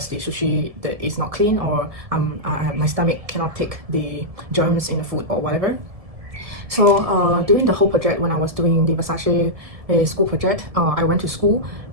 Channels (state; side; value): late; left; 1.7 ms